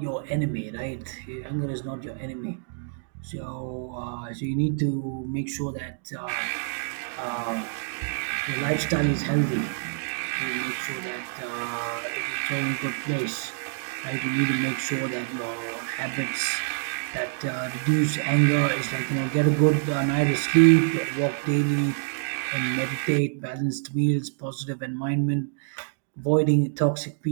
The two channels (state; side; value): silent; left; digital silence